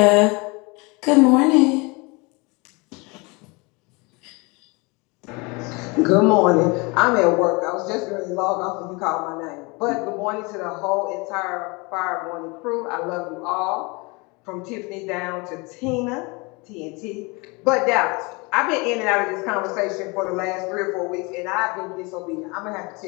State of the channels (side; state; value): right; quieter; 27.5 dB